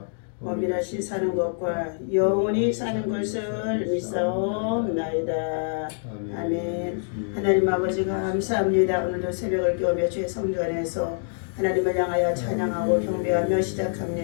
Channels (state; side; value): silent; right; digital silence